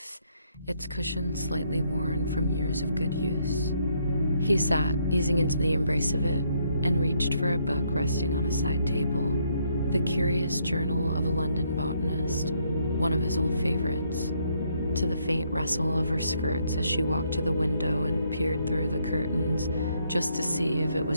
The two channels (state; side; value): inverted; both; correlation -0.72